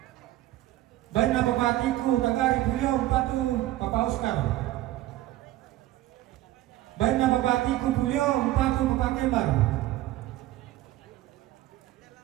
Baiklah Bapak Tiku Tagari Bulio umpatu Bapak Oscar. Baik na babati Kupulyo, Umpatu Papakembar.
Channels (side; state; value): left; quieter; 15.5 dB